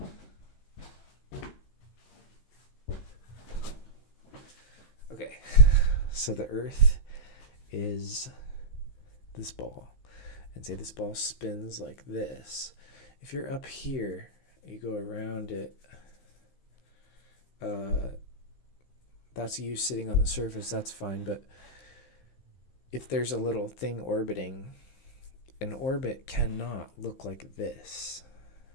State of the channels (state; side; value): late; right; 15 ms